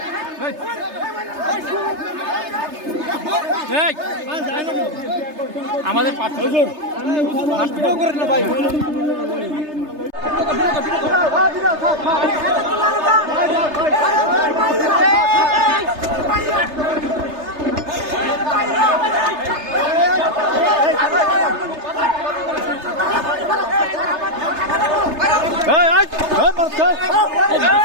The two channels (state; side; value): late; left; 3.3 ms